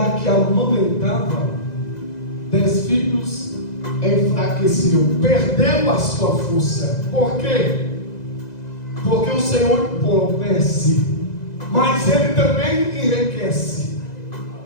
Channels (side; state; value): right; late; 2.0 ms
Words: que amamentava 10 filhos enfraqueceu, perdeu a sua força. Por quê? Porque o Senhor empobrece, mas Ele também enriquece,